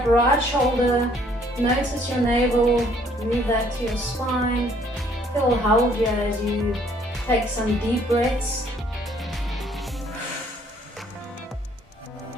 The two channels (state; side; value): normal; both; correlation 0.62